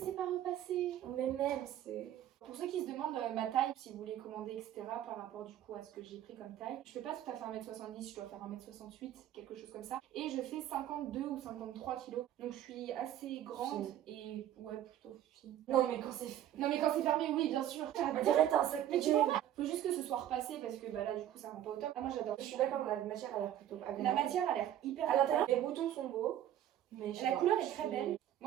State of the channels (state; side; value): quieter; left; 11.6 dB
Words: pas repassé. Mais même, c'est. Pour ceux qui se demandent ma taille, si vous voulez commander, etc., par rapport du coup à ce que j'ai pris comme taille, je fais pas tout à fait 1m70, je dois faire 1m68, quelque chose comme ça. Et je fais 52 ou 53 kilos. Donc je suis assez grande et ouais, plutôt fine. Non, mais quand c'est. Non mais quand c'est fermé, oui, bien sûr. On dirait t'as un sac Mais tu PGM. vois, faut juste que ce soit repassé parce que bah là du coup ça rend pas au top. Ah, moi j'adore. Je suis d'accord, la matière a l'air plutôt La agréable. matière a l'air hyper À l'intérieur, les boutons sont beaux. Mais je sais La pas, couleur est je très suis- belle.